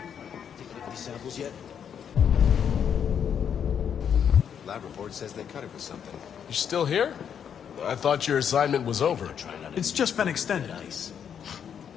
taking any samples yet? Lab report says they cut it with something. You're still here? I thought your assignment was over. It's just been extended.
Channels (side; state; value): right; quieter; 8.1 dB